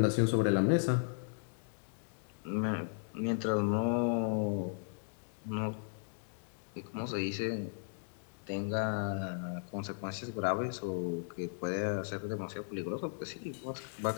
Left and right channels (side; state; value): right; silent; digital silence